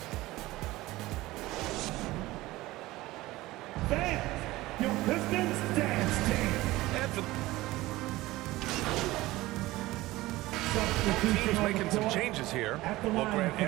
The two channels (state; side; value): quieter; left; 18.5 dB